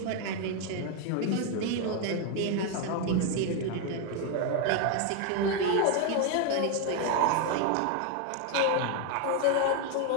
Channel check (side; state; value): both; different; correlation 0.01